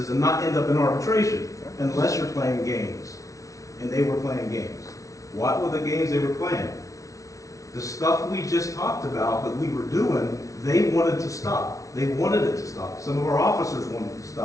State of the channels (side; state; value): right; late; 0.16 ms